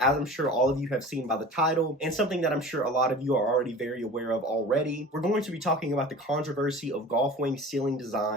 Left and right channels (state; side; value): normal; both; correlation 0.39